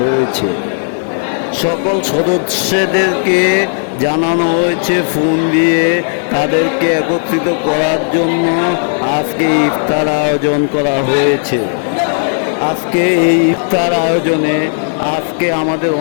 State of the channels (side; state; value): right; silent; digital silence